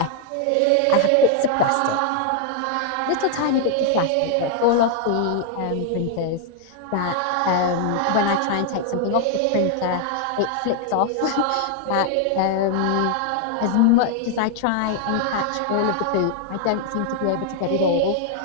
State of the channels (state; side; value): different; both; correlation 0.00